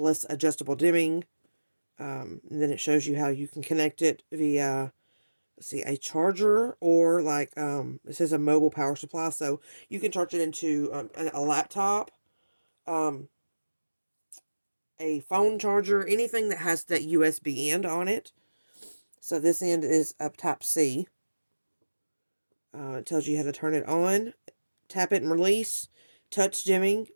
adjustable dimming. And then it shows you how you can connect it via... see, a charger, or like it says a mobile power supply, so you can charge it into a laptop, a phone charger, anything that has that USB end on it. So this end is up Type C. It tells you how to turn it on, tap it and release. Touch dimming,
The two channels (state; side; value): inverted; both; correlation -1.00